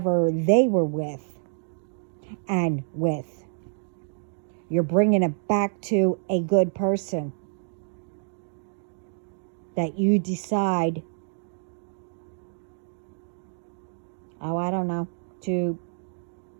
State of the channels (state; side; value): silent; left; 60 dB below the other